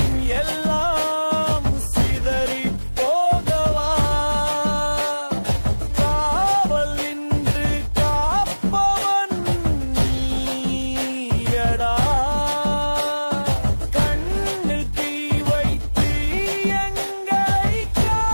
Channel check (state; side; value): inverted; both; correlation -1.00